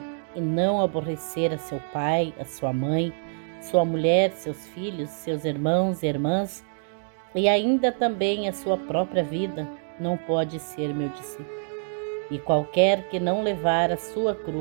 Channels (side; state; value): left; silent; 61 dB below the other